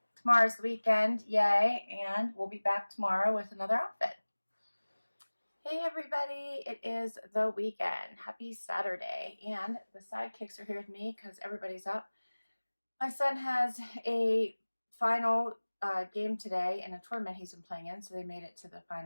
tomorrow's the weekend, yay, and we'll be back tomorrow with another outfit. Hey everybody, it is the weekend. Happy Saturday, and the sidekicks are here with me because everybody's up. My son has a final game today in a tournament he's been playing in, so they made it to the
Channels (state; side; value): inverted; both; correlation -1.00